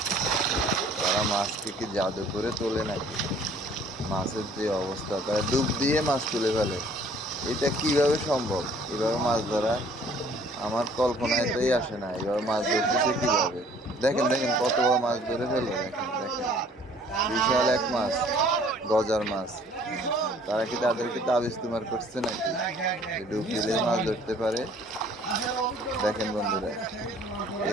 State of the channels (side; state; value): both; normal; correlation 0.56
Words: তারা মাছকে কি জাদু করে তোলে নাকি? মাছের যে অবস্থা, তারা ডুব দিয়ে মাছ তুলে ফেলে। এটা কিভাবে সম্ভব? এভাবে মাছ ধরা আমার কল্পনাতেই আসে না। এভাবে মাছ ধরতেছে কিভাবে? দেখেন দেখেন, কত বড় মাছ ধরে ফেললো, দেখেন দেখেন, বিশাল এক মাছ, গজার মাছ। তারা কি তাদেরকে তাবিজ তুমার করছে নাকি, যে ডুব দিলেই মাছ ধরতে পারে? দেখেন বন্ধুরা,